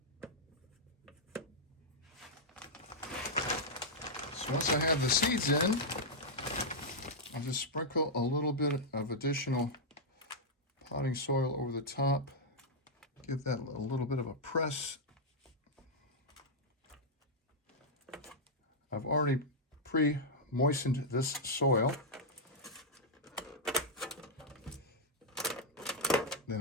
So once I have the seeds in, I'll just sprinkle a little bit of additional potting soil over the top. Give that a little bit of a press. I've already pre-moistened this soil.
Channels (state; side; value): normal; both; correlation -0.05